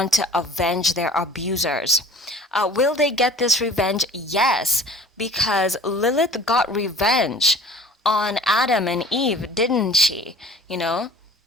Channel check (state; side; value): normal; both; correlation 0.46